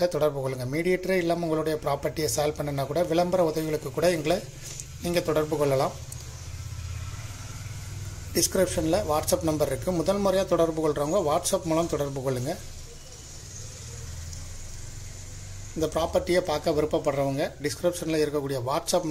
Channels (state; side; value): identical; both; correlation 1.00